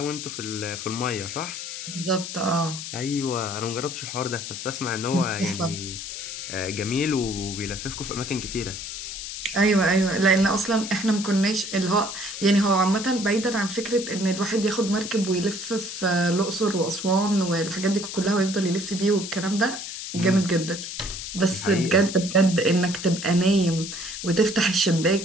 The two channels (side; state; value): left; noise; hiss, 8 dB below the sound